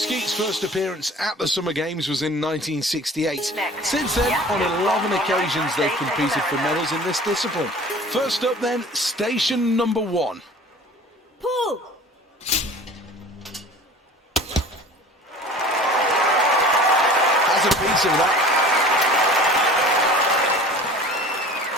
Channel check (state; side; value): normal; both; correlation 0.43